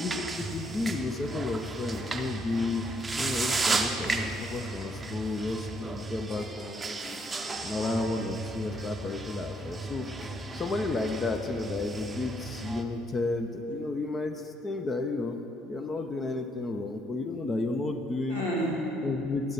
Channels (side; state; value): both; normal; correlation 0.72